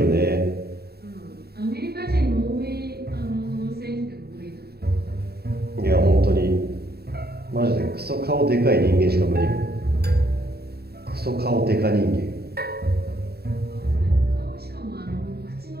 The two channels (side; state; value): left; late; 0.46 ms